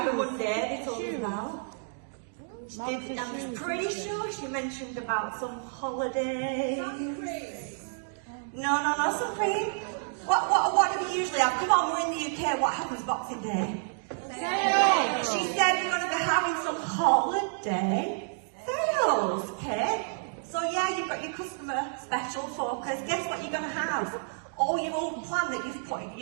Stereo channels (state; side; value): silent; left; digital silence